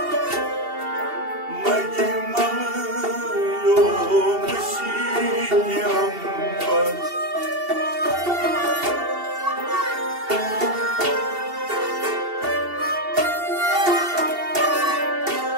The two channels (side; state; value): left; late; 2.8 ms